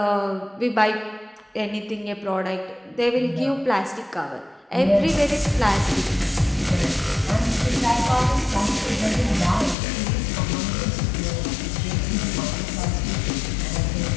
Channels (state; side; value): drops out; right; at 9.8 s